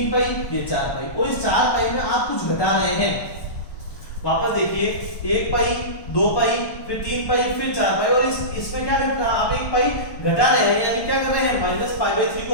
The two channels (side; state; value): right; late; 1.1 ms